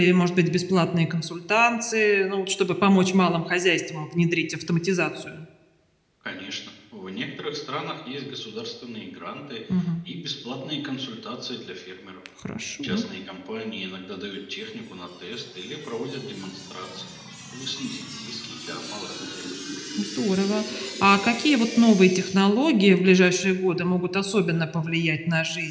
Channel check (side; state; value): both; identical; correlation 1.00